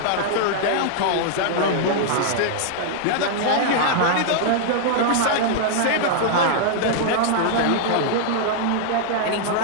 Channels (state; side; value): different; both; correlation -0.01